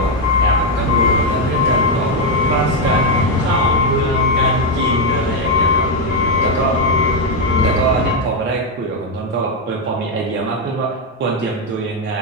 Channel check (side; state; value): both; normal; correlation 0.04